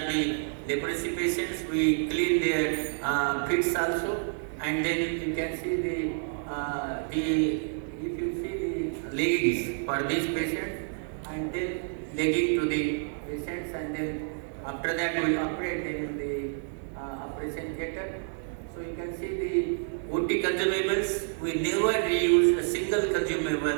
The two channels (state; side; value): silent; left; 59 dB below the other